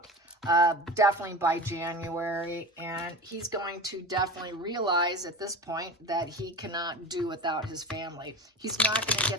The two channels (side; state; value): both; normal; correlation 0.31